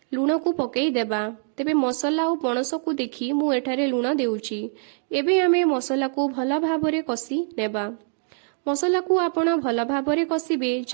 लूण को पकेई देबा। तेबे मसला और पणस को देखि मु एठारे लूण देउछि। एबे आमे मसला को भल भाबरे कसी नेबा। मसला को आपण भल भाबरे कसिबे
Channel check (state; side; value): silent; left; 62 dB below the other